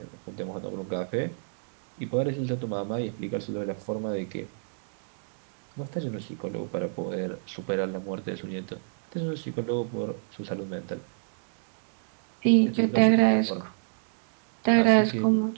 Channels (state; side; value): silent; left; digital silence